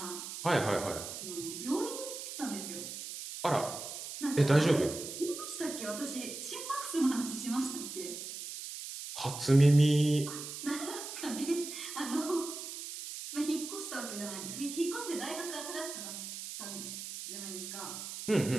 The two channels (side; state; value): right; noise; hiss, 8 dB below the sound